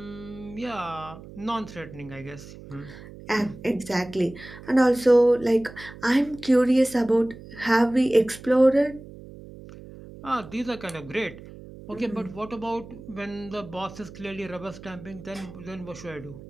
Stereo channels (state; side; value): noise; right; hum, 16 dB below the sound